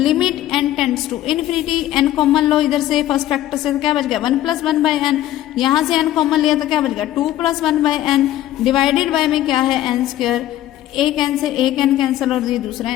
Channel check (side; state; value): right; quieter; 13.6 dB